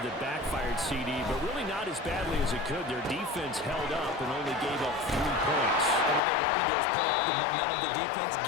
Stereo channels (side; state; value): right; drops out; at 6.2 s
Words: that backfired CD, but really not as badly as it could. Their defense held up and only gave up 3 points. And what they wanted to do is play off the momentum the defense